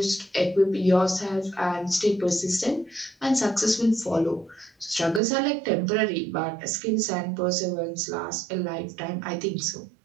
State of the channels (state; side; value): drops out; left; at 5.2 s